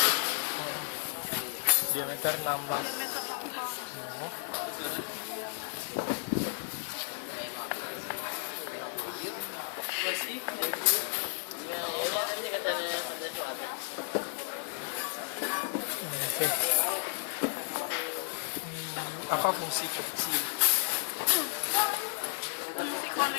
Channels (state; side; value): silent; right; digital silence